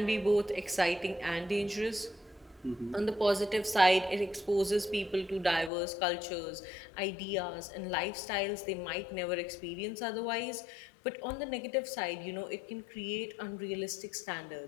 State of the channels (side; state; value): right; drops out; at 5.7 s